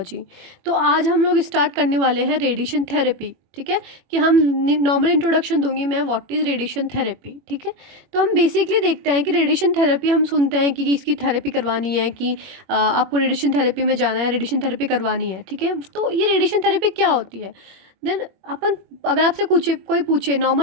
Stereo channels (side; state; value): left; late; 21 ms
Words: तो आज हम लोग start करने वाले हैं रेडिएशन थेरेपी। ठीक है, कि हम नॉर्मल इंट्रोडक्शन दूंगी मैं, व्हाट इज़ रेडिएशन थेरेपी। ठीक है, तो हम बेसिकली देखते हैं कि रेडिएशन थेरेपी, हम सुनते हैं कि इसकी थेरेपी करवानी है, कि आपको रेडिएशन थेरेपी में जाना है, रेडिएशन थेरेपी करवानी है। ठीक है, तो ये रेडिएशन थेरेपी क्या होती है? देन अपन, अगर आपसे कोई पूछे